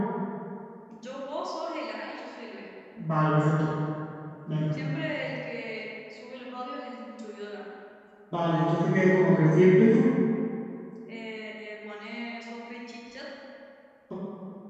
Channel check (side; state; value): both; identical; correlation 1.00